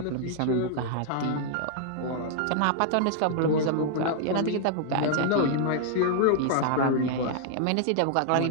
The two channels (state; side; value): different; both; correlation -0.01